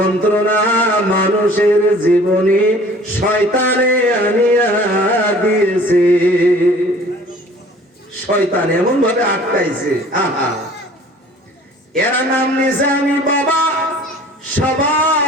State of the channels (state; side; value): normal; both; correlation 0.50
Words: মানুষের জীবনে শয়তানে আনিয়া দিয়েছে। শয়তান এমন ভাবে আটকাইছে, আহা। এরা নাম নিছে আমি বাবা,